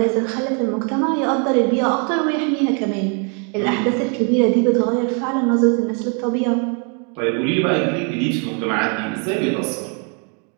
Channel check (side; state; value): left; quieter; 37.3 dB